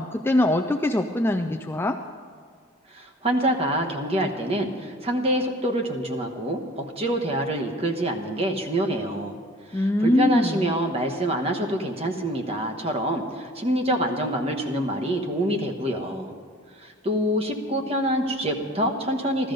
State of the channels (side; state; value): both; normal; correlation 0.49